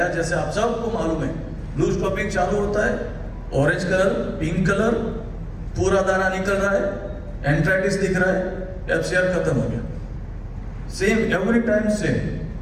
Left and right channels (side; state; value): both; identical; correlation 1.00